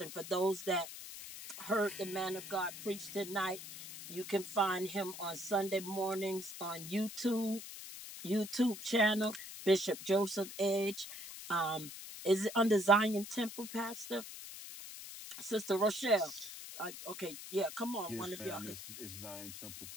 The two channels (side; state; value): left; noise; hiss, 11 dB below the sound